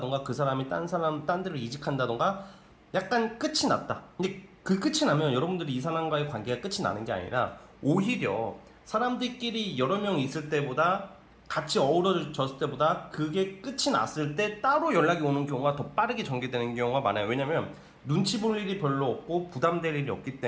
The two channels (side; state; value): both; identical; correlation 1.00